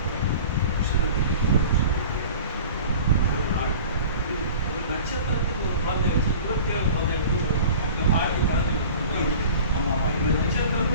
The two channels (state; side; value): inverted; both; correlation -0.41